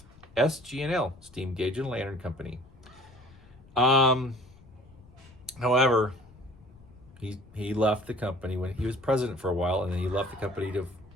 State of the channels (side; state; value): left; noise; rumble, 24 dB below the sound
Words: SG&L, Steam Gauge and Lantern Company. However, he left the company when he was president for a while, and then he left the company to